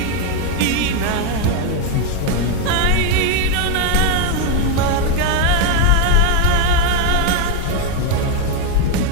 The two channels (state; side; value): different; both; correlation 0.01